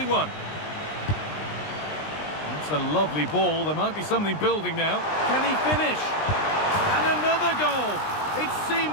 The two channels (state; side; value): late; right; 20 ms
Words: won. That's a lovely ball. There might be something building now. Can he finish? And another goal. It